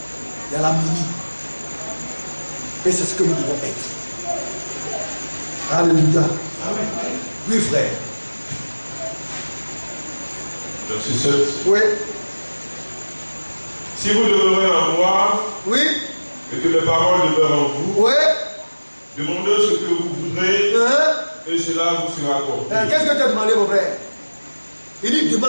Il y a l'harmonie. Et c'est ce que nous devons être. Alléluia. Amen. Oui, frère. Verset 7. Oui. Si vous demeurez en moi, Oui. et que mes paroles demeurent en vous, Oui. demandez ce que vous voudrez, et cela vous sera accordé. Qu'est-ce que tu as demandé, mon frère? Il dit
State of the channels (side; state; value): both; inverted; correlation -1.00